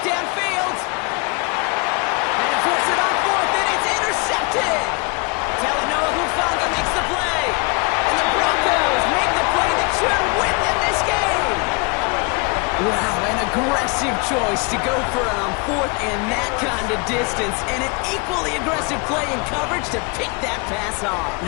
downfield. And to force it on fourth, and it's intercepted. Talanoa Hufanga makes the play. And the Broncos make the play that should win them this game. Wow, an aggressive choice to go for it on fourth and that kind of distance, and an equally aggressive play in coverage to pick that pass off.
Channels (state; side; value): quieter; right; 30.9 dB